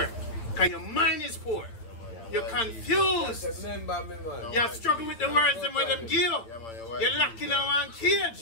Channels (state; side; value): late; right; 9.0 ms